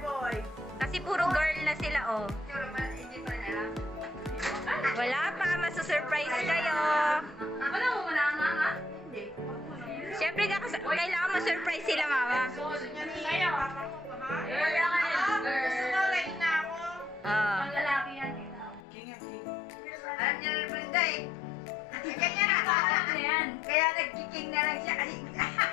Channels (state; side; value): drops out; right; at 18.8 s